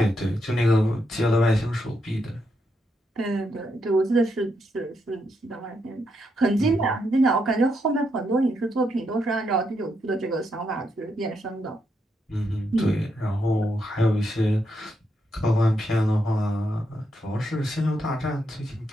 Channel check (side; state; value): both; normal; correlation 0.80